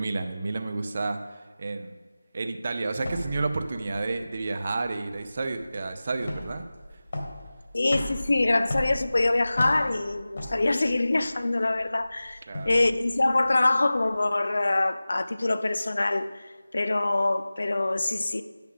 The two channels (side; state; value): both; inverted; correlation -0.97